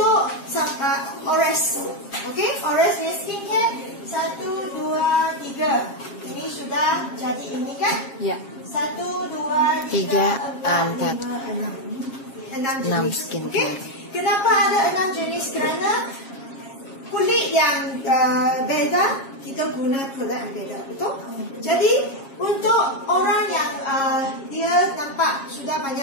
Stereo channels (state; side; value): late; right; 7.4 ms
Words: Ores. Okey, Ores ni skincare 1, 2, 3. Ini sudah jadi ini kan? Ya. 1, 2, 3, 4, 5, 6 jenis skincare. Okay? Kenapa ada 6 jenis? Kerana kulit yang beza, kita guna produk yang beza. Betul? Jadi untuk orang yang dia nampak sudah